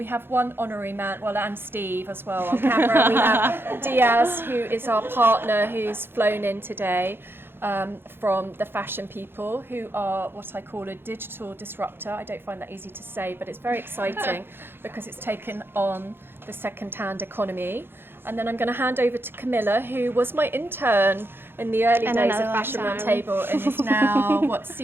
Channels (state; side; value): late; left; 0.10 ms